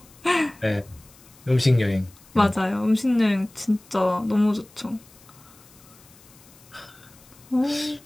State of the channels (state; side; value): noise; left; hiss, 25 dB below the sound